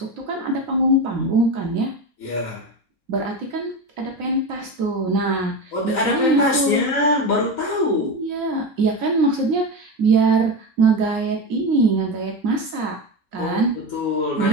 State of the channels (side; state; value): both; normal; correlation 0.20